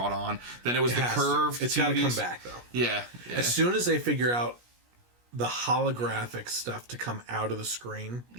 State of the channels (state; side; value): late; left; 17 ms